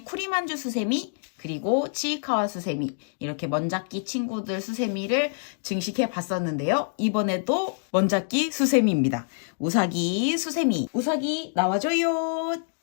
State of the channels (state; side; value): silent; right; digital silence